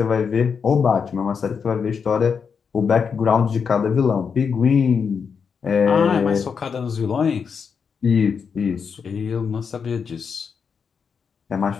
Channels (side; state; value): right; quieter; 6.2 dB